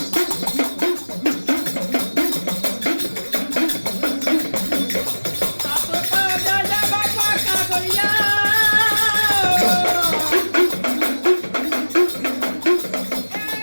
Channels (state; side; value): inverted; both; correlation -1.00